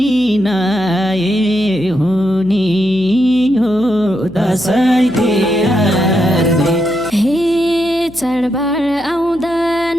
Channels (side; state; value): left; noise; hum, 23 dB below the sound